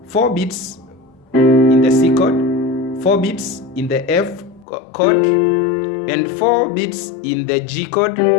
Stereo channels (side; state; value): right; drops out; at 4.7 s